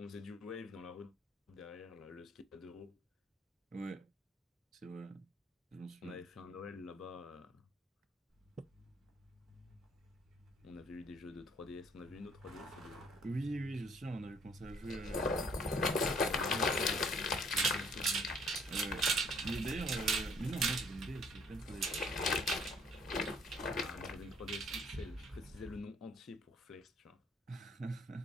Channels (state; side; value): normal; both; correlation 0.61